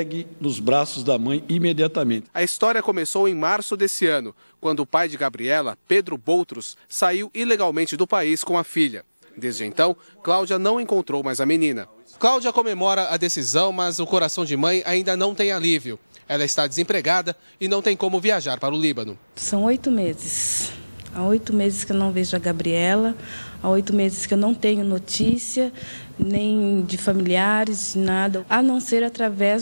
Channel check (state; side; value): inverted; both; correlation -1.00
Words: nos braços da mãe imediatamente. A história começou em março desse ano, quando o pai de Gabriela, Pedro Boutros, saiu ilegalmente do país com a filha. Desde então, Cláudia não encontrou mais a menina. Cláudia comemora a decisão, mas o coração de mãe ainda não tem alívio. Ela está desempregada e não tem como viajar para o Líbano. São 8 meses. Há 8 meses que eu não vejo a Gabriela, há 8 meses que eu não tenho notícia, nem de familiares, nada, a não ser